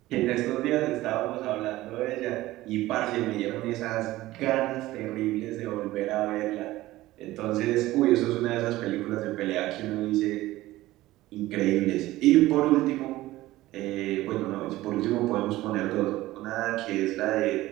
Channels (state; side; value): quieter; left; 17.0 dB